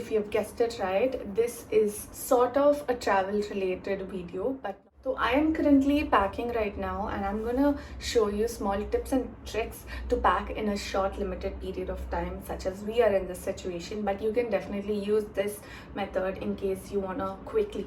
you've guessed it right, this is sort of a travel related video, but so I am currently packing right now, and I'm gonna show you small tips and tricks to pack in a short limited period of time, such as we are in this situation. But you can definitely use this method in case you wanna quickly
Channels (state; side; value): identical; both; correlation 1.00